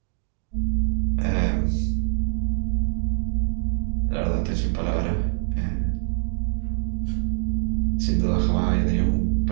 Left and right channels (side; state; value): left; silent; digital silence